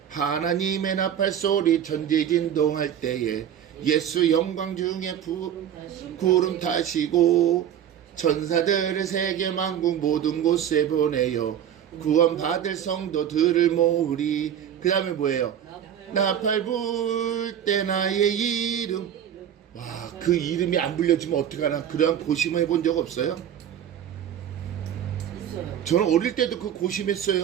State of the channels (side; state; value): left; quieter; 9.6 dB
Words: 하나님의 나팔 소리 전지진동할 때에 예수 영광 중에 구름 타시고 천사들을 세계 만국 모든 곳에 보내요 구원 받을 성도들을 모으리. 그 다음에 뭐예요? 나팔 불 때 나의 이름. 와, 그 이름이 안 불려지면 어떡하나. 그러한 고심을 해본 적 없어요? 저는 어릴 때도 그